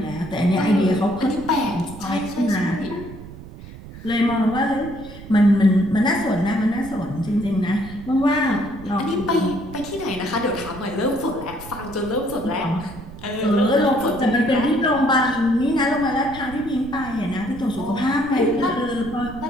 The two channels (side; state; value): right; noise; rumble, 15 dB below the sound